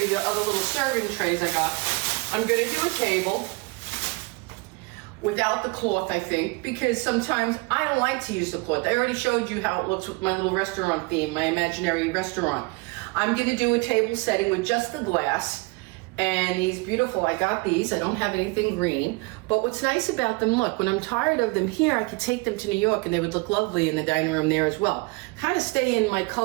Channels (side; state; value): left; quieter; 26.8 dB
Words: the other little serving trays I got, I'm gonna do a table without the cloth, I think, because sometimes I don't like to use the cloth. I already showed you how it looks with my little restaurant theme, my imaginary restaurant. I'm gonna do a table setting with just the glass, and these beautiful, I got these, I don't have anything green, but what's nice about them, look, when I'm tired of them here, I could take them to New York and they would look lovely in the dining room there as well. Kind of stay in my